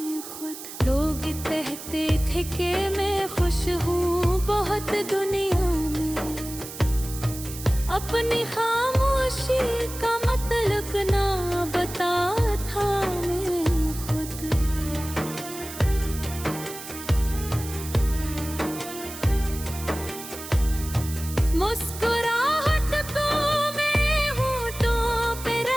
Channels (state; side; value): noise; right; hiss, 12 dB below the sound